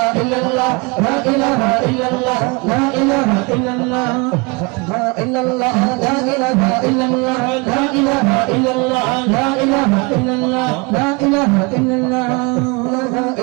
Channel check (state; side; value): quieter; left; 28.0 dB